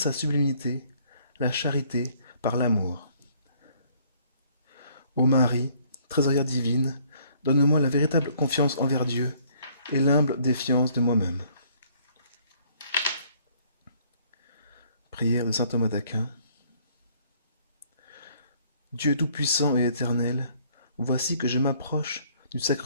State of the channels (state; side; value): inverted; both; correlation -0.63